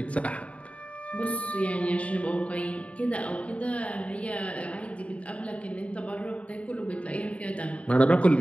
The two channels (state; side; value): late; right; 0.064 ms